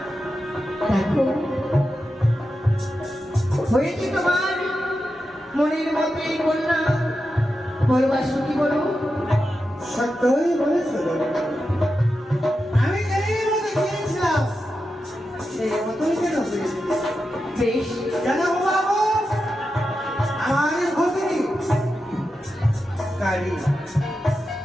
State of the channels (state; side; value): normal; both; correlation 0.89